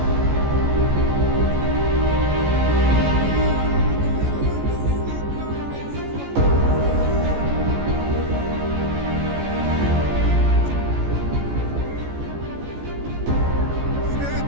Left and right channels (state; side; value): late; left; 14 ms